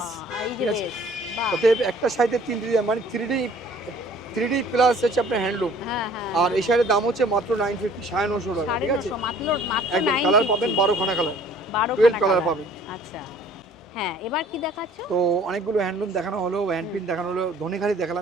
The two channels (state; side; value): normal; both; correlation 0.53